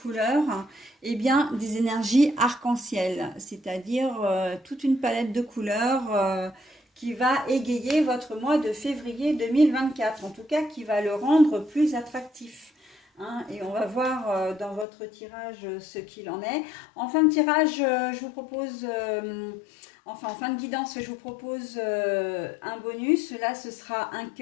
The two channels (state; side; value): drops out; right; at 14.9 s